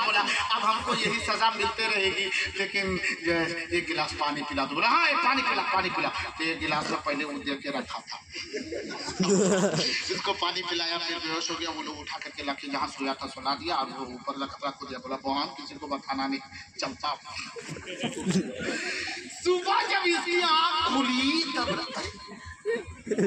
बोला अब हमको यही सजा मिलते रहेगी, लेकिन एक गिलास पानी पिला दो। बोला हाँ एक पानी पिला, पानी पिला। तो एक गिलास में पहले वो दे के रखा था, इसको पानी पिलाया, फिर बेहोश हो गया। वो लोग उठा करके लाके जहाँ सोया था सुला दिया, और वो ऊपर रख दिया। बोला बहन किसी को बताना नहीं, चलता। सुबह जब इसकी आँख खुली तब लगता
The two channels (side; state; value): both; identical; correlation 1.00